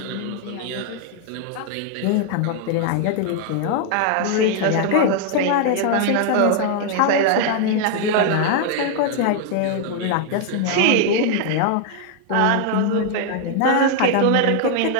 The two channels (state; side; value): different; both; correlation 0.00